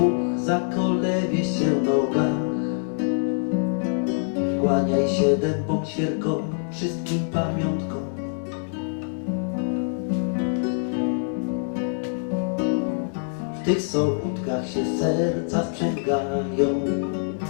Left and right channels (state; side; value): silent; right; 62 dB below the other